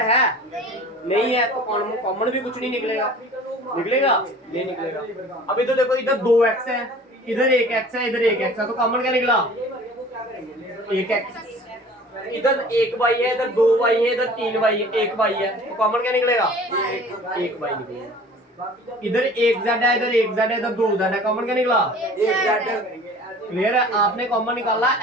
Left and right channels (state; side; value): normal; both; correlation 0.45